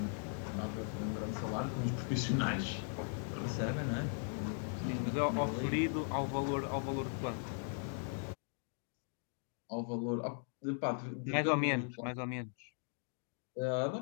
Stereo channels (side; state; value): right; silent; 52 dB below the other